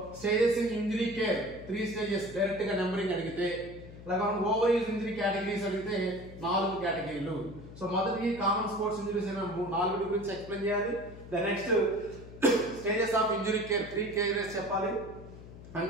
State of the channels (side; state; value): left; noise; hum, 15 dB below the sound